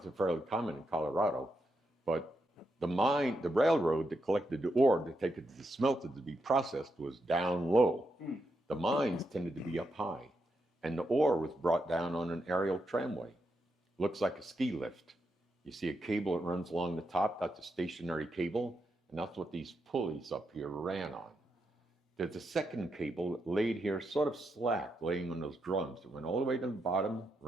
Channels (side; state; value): both; normal; correlation 0.83